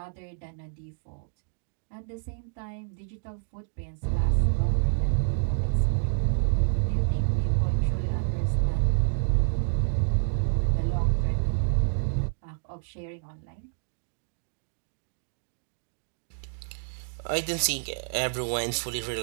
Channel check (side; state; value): left; silent; digital silence